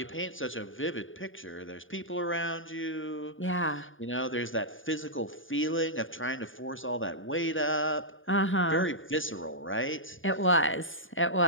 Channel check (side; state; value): right; late; 0.57 ms